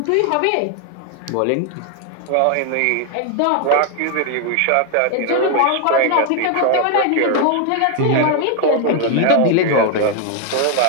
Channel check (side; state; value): both; different; correlation 0.00